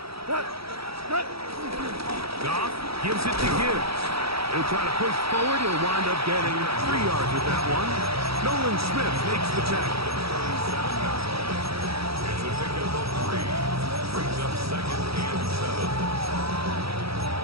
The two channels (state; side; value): late; left; 0.76 ms